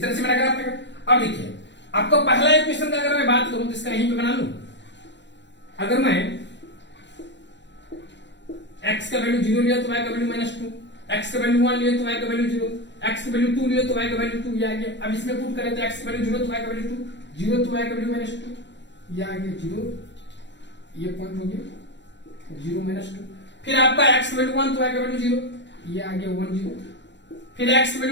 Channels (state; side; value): late; right; 0.52 ms